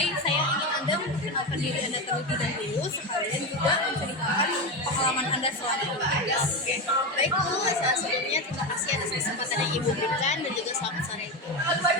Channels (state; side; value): normal; both; correlation 0.17